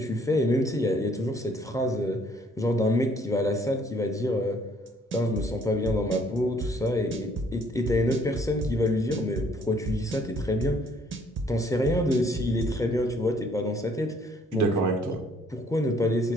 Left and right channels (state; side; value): normal; both; correlation 0.63